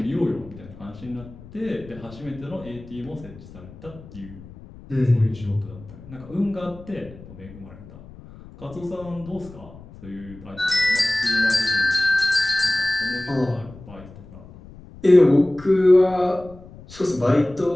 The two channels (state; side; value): noise; left; rumble, 18 dB below the sound